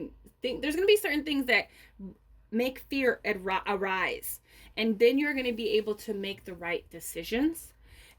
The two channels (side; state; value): both; identical; correlation 1.00